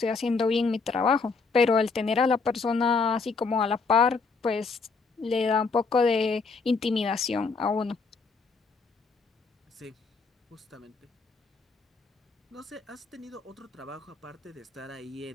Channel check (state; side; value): quieter; right; 4.4 dB